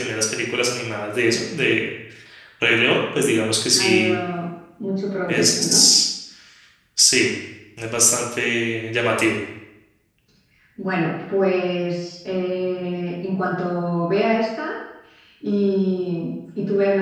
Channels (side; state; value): both; identical; correlation 1.00